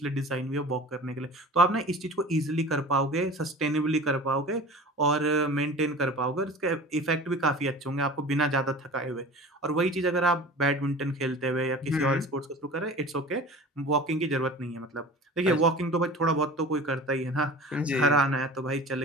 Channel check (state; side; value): normal; both; correlation 0.39